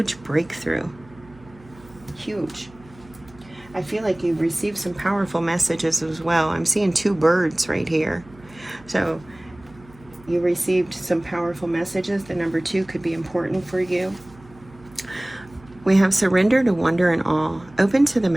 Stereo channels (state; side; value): noise; right; hum, 24 dB below the sound